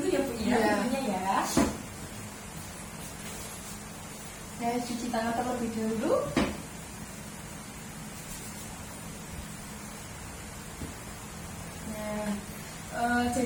ya Bu ya, Iya. pintunya ya. Saya cuci tangan terlebih dahulu. Nah,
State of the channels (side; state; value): both; identical; correlation 1.00